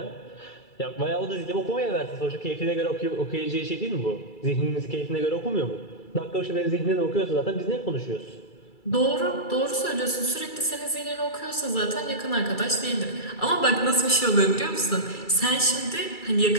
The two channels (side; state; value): right; late; 2.3 ms